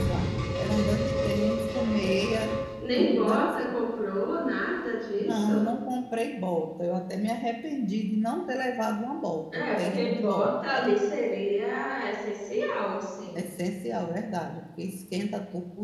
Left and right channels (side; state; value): both; identical; correlation 1.00